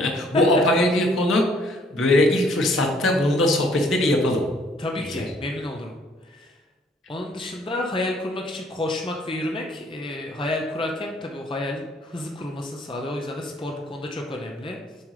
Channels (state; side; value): normal; both; correlation 0.62